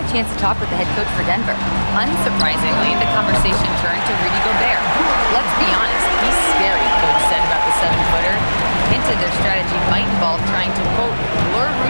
chance to talk with the head coach for Denver. Unsurprisingly, the conversation turned to Rudy Gobert. Let's be honest, he's scary, coach said about the 7-footer. Hinted their strategy might involve trying to, quote, lure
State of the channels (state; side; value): inverted; both; correlation -1.00